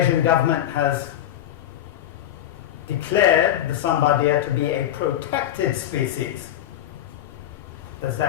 government has declared the Sambar deer to be a protected species. Does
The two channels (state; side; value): quieter; right; 11.8 dB